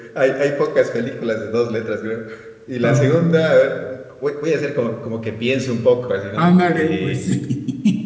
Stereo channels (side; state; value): both; identical; correlation 1.00